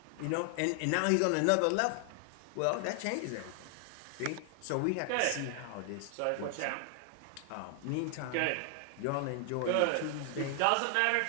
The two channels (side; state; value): both; different; correlation 0.00